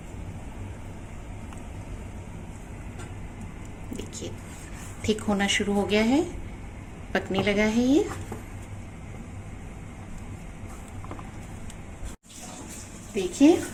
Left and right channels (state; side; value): identical; both; correlation 1.00